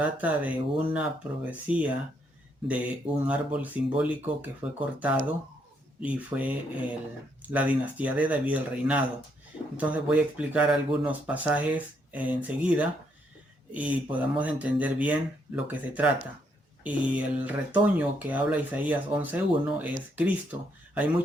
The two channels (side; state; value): both; normal; correlation 0.74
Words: de una profecía de un árbol simbólico que fue cortado y fue la dinastía de David, el reinado. Entonces voy a explicar algunos pasajes enseguida y podamos entender bien lo que se trata. Y el retoño que habla Isaías 11.1 es Cristo. Hay